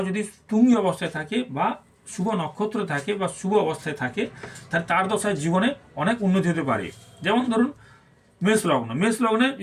যদি তুঙ্গি অবস্থায় থাকে বা শুভ নক্ষত্র থাকে বা শুভ অবস্থায় থাকে, তাহলে তার দশায় জীবনে অনেক উন্নতি হতে পারে। যেমন ধরুন মেষ লগ্ন, মেষ লগ্নে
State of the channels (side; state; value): both; identical; correlation 1.00